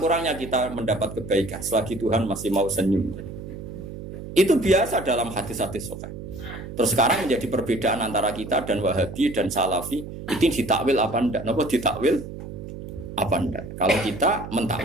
kita mendapat kebaikan selagi Tuhan masih mau senyum. Itu biasa dalam hadis-hadis sahih. Terus sekarang menjadi perbedaan antara kita dan Wahabi dan Salafi itu ditakwil apa ndak? Napa ditakwil apa ndak? Kalau kita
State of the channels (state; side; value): noise; right; hum, 11 dB below the sound